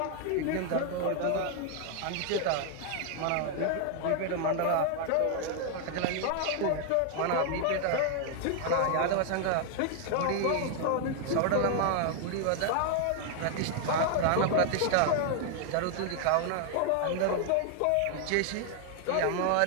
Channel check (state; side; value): different; both; correlation 0.00